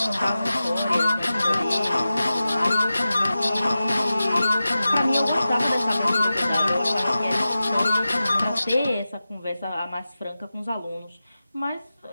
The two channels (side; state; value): both; inverted; correlation -0.94